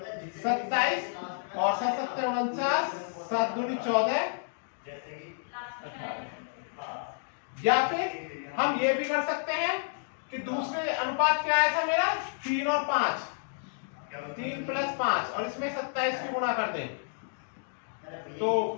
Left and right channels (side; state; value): right; silent; digital silence